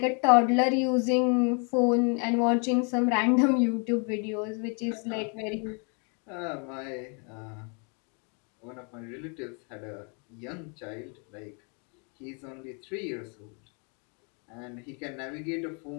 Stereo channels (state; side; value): quieter; right; 37.0 dB